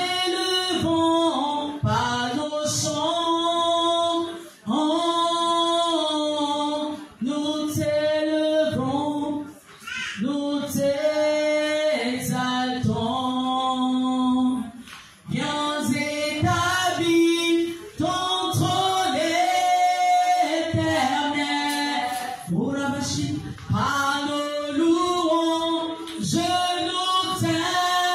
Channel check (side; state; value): both; identical; correlation 1.00